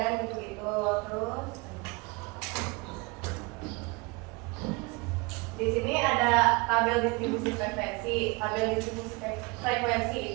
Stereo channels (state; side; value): quieter; left; 27.2 dB